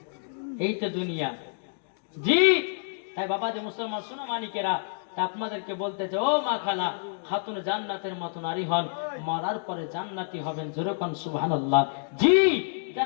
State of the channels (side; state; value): right; silent; digital silence